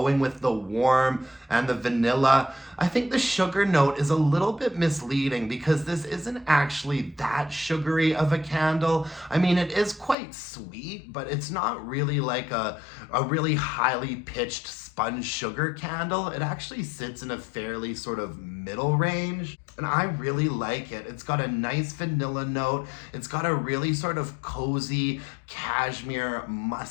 with the warm and the vanilla. I think the sugar note is a little bit misleading because this isn't actually that sugary of a candle. I mean, it is quite sweet, but it's not really like a really highly pitched sponge sugar candle. It actually sits in a fairly sort of middle range, and I really like it. It's got a nice vanilla note. It's got a really sort of cozy cashmere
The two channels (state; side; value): drops out; right; at 10.2 s